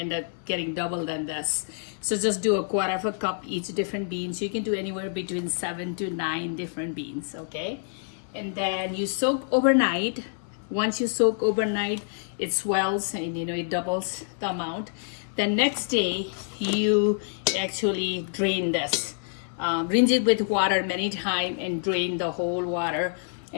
up getting double than this. So just do 1/4 cup each different beans. You can do anywhere between 7 to 9 different beans. Okay, and then you soak overnight. Once you soak overnight, it swells and it doubles the amount. The next day you actually drain this. Rinse it with water many times and drain the whole water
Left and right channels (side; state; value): right; silent; 60 dB below the other